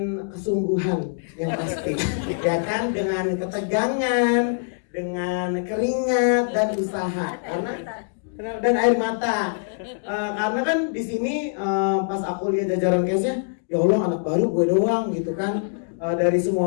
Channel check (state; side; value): silent; right; digital silence